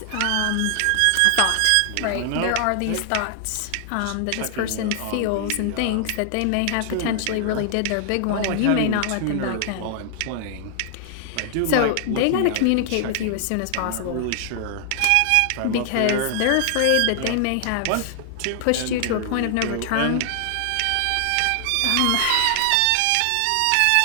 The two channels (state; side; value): different; both; correlation 0.00